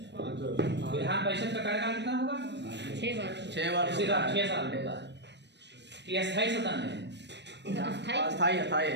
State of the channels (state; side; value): late; left; 0.50 ms